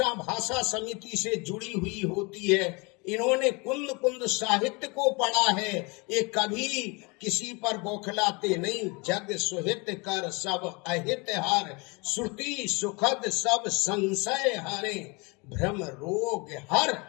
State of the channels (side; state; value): right; quieter; 28.5 dB